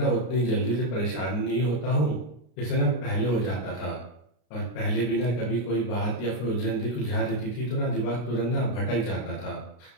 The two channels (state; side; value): late; right; 33 ms